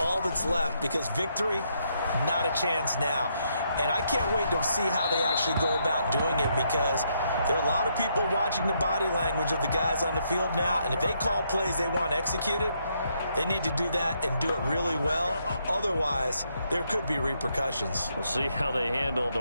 that's left, because victory, not a chance now. And I can't wait to see how they actually go about doing it, because there are a lot of people watching the body language of the guys on the field now, and if they call plays they want executed, they need to do that and do it really well. Otherwise, there could be repercussions. We'll see how they handle the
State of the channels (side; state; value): both; inverted; correlation -0.75